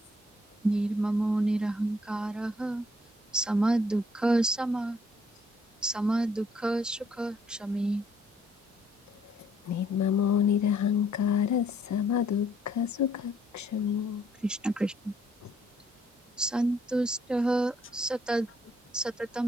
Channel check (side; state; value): both; normal; correlation 0.66